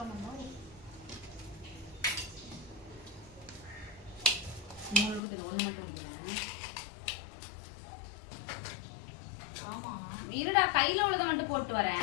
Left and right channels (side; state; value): right; drops out; at 5.2 s